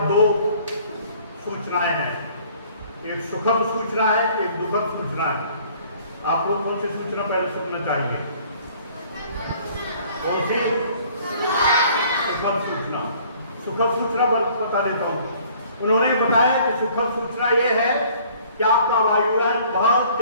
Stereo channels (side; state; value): both; inverted; correlation -0.56